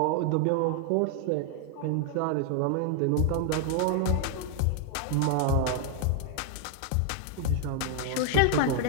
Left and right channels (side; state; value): both; different; correlation 0.00